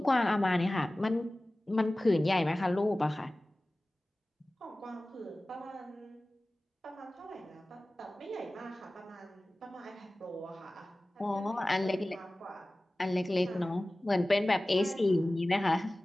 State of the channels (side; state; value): both; normal; correlation 0.97